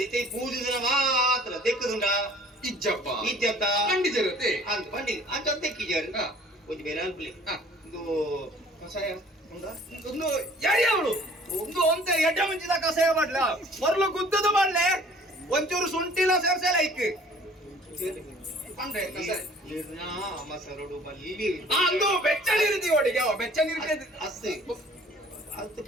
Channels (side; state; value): both; normal; correlation 0.52